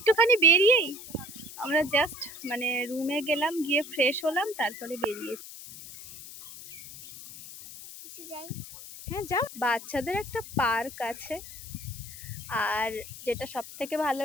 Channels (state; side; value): noise; left; hiss, 14 dB below the sound